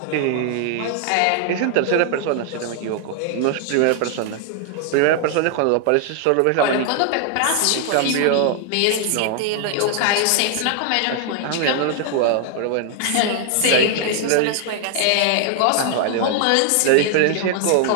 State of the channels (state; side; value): different; both; correlation 0.00